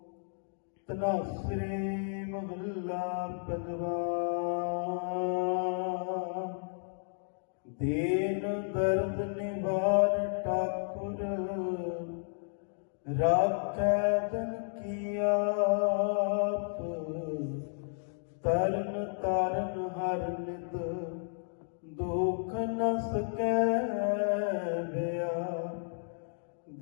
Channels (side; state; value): right; silent; digital silence